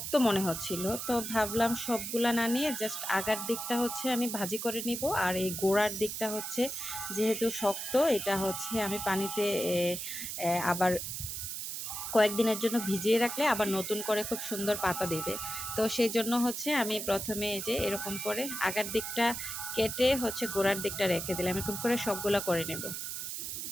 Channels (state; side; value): noise; right; hiss, 5 dB below the sound